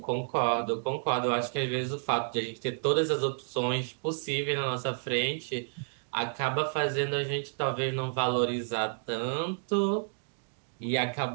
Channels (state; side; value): silent; left; digital silence